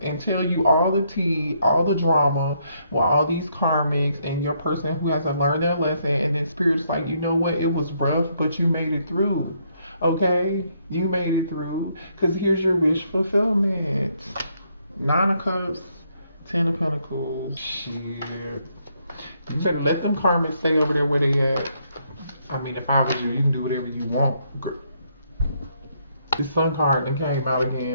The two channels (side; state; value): both; inverted; correlation -0.73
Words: and tell you all the tea, all the drama, with all these karmics and your person who hasn't learned their lesson, and then spirit's like, you know what, it was rough, but you made it through. Okay? You made it through. Because here's your wish fulfillment. 9 of Cups, 10 of Pentacles. Shit. You better let them karmics stay over there where they at. I mean, if I was you can do whatever you want. The Sun card that came out